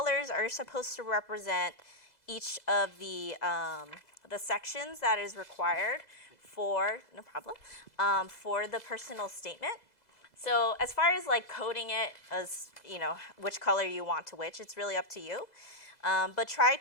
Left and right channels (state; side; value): late; right; 2.0 ms